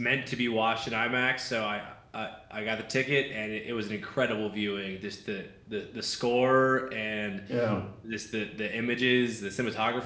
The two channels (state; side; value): identical; both; correlation 1.00